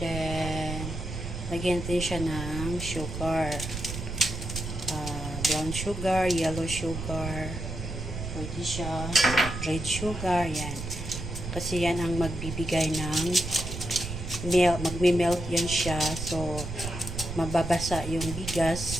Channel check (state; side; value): noise; right; rumble, 6 dB below the sound